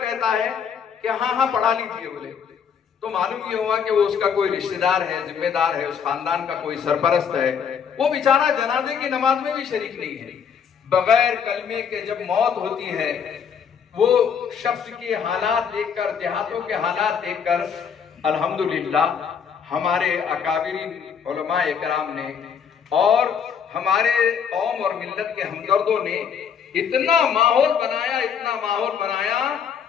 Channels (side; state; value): right; quieter; 7.2 dB